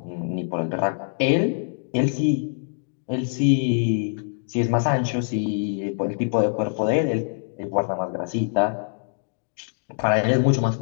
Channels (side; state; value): right; silent; digital silence